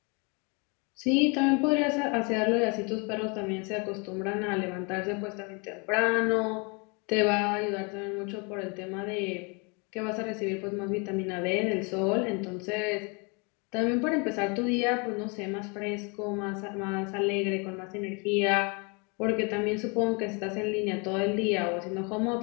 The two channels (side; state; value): right; quieter; 32.3 dB